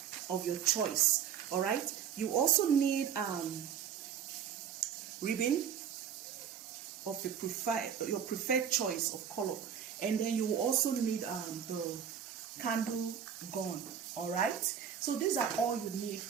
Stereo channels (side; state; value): left; quieter; 8.3 dB